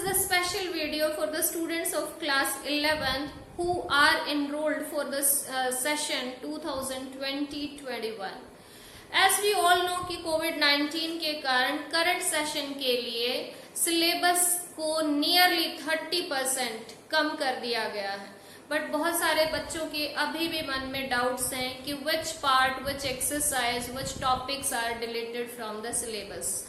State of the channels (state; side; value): identical; both; correlation 1.00